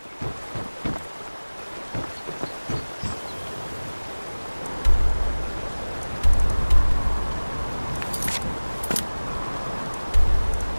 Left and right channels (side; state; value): both; inverted; correlation -1.00